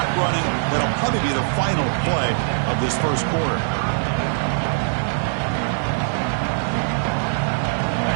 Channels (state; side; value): silent; left; digital silence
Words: running. That'll probably be the final play of this first quarter.